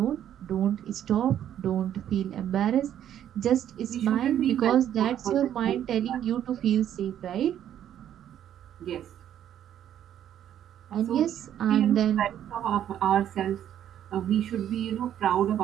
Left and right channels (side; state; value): left; quieter; 10.5 dB